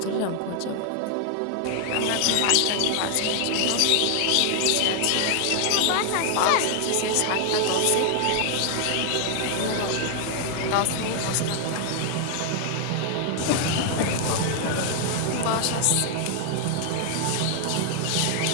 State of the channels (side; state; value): both; different; correlation 0.00